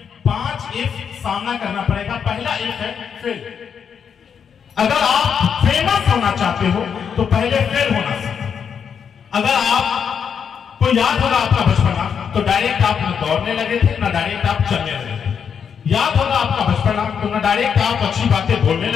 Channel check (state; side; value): quieter; right; 7.2 dB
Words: एफ सामना करना पड़ेगा। पहला एफ है फेल। अगर आप फेमस होना चाहते हो तो पहले फेल होना सीखो। अगर आपको याद होगा आपका बचपना, तो डायरेक्ट आप न दौड़ने लगे थे ना डायरेक्ट आप चलने लगे थे। याद होगा आपका बचपना, तो ना डायरेक्ट आप अच्छी बातें बोलने